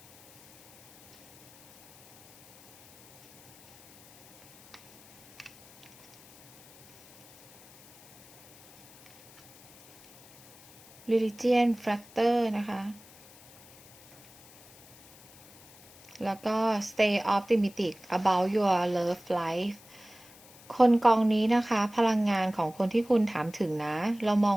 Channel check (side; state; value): left; noise; hiss, 24 dB below the sound